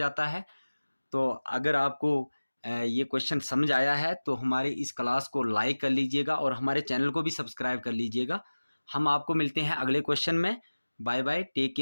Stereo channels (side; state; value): both; inverted; correlation -1.00